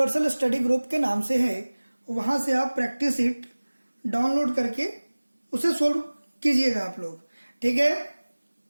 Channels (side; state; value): both; inverted; correlation -1.00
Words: स्टडी ग्रुप के नाम से है। वहां से आप प्रैक्टिस शीट डाउनलोड करके उसे सोल्व कीजिएगा आप लोग, ठीक है।